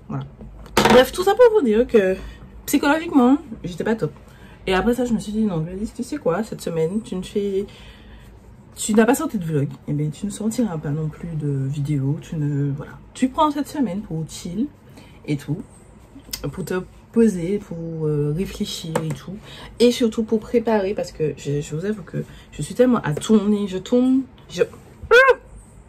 Voilà. Bref, tout ça pour vous dire que psychologiquement, j'étais pas top. Et après ça, je me suis dit, non, Gladys, tu sais quoi, cette semaine, tu n'as pas sorti de vlog, et bien tu ne sortiras pas non plus de vidéo, voilà. Tu prends cette semaine pour chill et tout, pour te poser, pour réfléchir et tout, et surtout pour préparer, parce que je vous avoue que je suis tellement à tourner,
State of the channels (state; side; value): identical; both; correlation 1.00